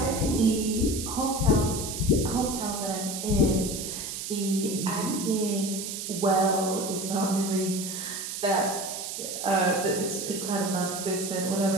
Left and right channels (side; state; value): right; noise; hiss, 6 dB below the sound